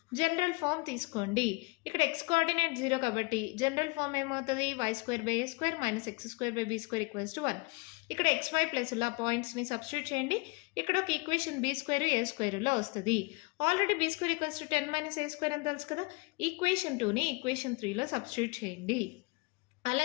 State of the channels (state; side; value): quieter; right; 27.8 dB